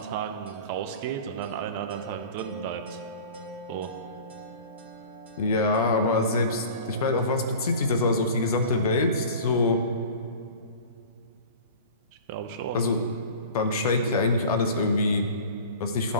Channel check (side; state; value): both; inverted; correlation -0.40